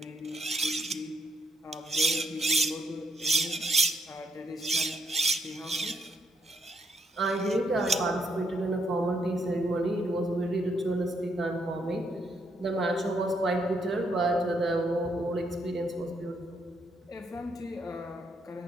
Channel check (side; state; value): both; normal; correlation 0.75